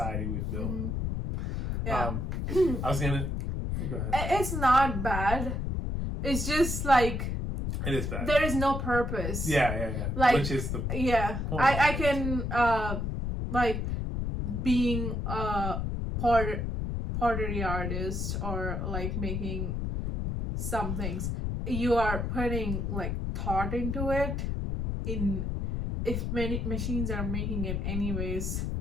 we've built. I was gonna go ahead. It's not bad, it's just like it is bad. There is no purpose. Yeah. Which is the point. I can being a pottery artist, or making some things, you are putting thought into it. If many machines are making it anyways,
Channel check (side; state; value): left; noise; rumble, 1 dB below the sound